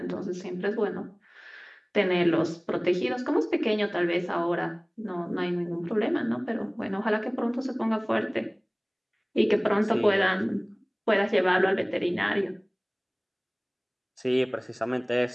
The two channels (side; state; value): both; identical; correlation 1.00